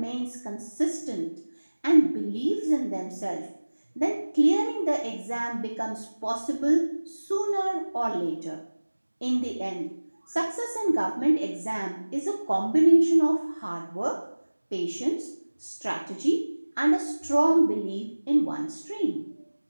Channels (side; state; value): both; inverted; correlation -1.00